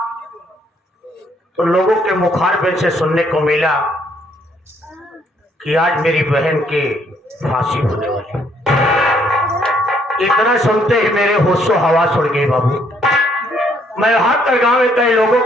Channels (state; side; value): normal; both; correlation 0.68